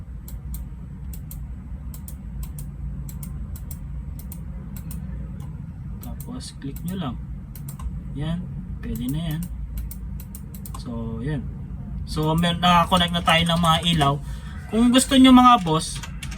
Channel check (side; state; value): both; identical; correlation 1.00